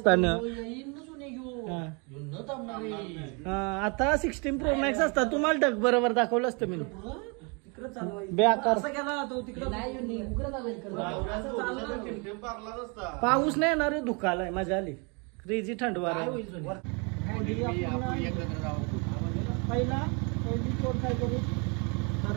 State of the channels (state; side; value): quieter; left; 32.7 dB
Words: आता 16 Pro Max असता तुम्हाला ढग बरोबर दाखवलं असतं मी. बेकार पाऊस नाही येणार धुकालाय मजा आली. क्रेझी थंड वारा. पहिली कोण काय करू